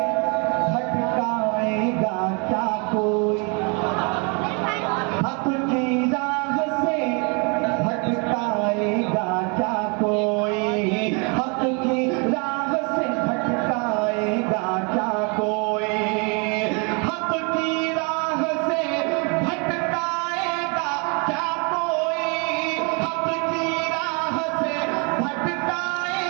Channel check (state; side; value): quieter; left; 33.7 dB